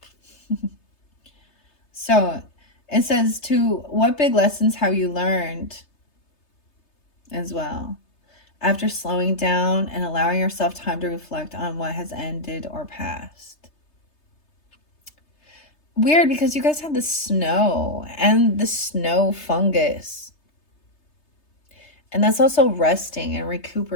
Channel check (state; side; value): late; right; 3.3 ms